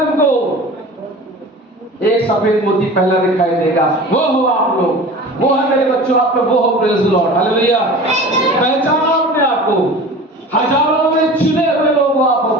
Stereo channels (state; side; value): normal; both; correlation 0.38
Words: तुमको, एक सफेद मोती पहला दिखाई देगा, वो हो आप लोग, वो है मेरे बच्चों, आप लोग वो हो, प्रेज़ द लॉर्ड, हालेलुया। पहचानो अपने आप को, हजारों में चुने हुए लोग आप हो,